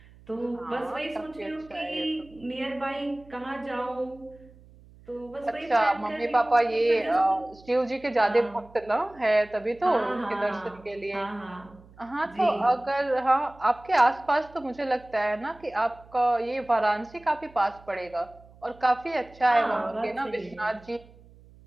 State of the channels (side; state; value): right; noise; hum, 24 dB below the sound